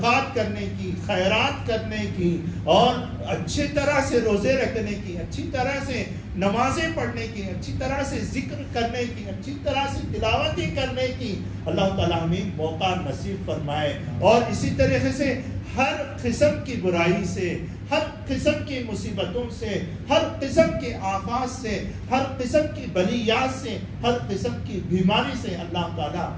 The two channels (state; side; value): identical; both; correlation 1.00